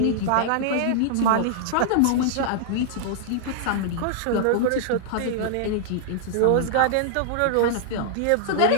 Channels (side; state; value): both; different; correlation -0.01